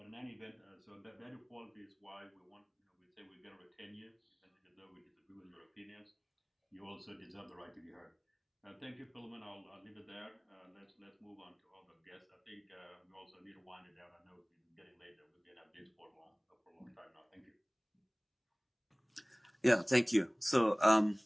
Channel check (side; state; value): both; identical; correlation 1.00